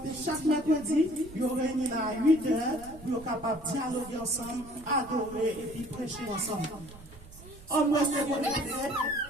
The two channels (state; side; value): noise; right; rumble, 19 dB below the sound